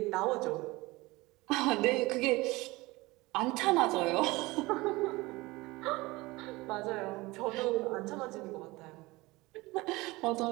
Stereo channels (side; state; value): left; quieter; 21.5 dB